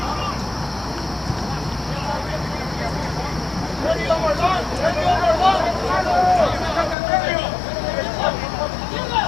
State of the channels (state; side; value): drops out; right; at 7.0 s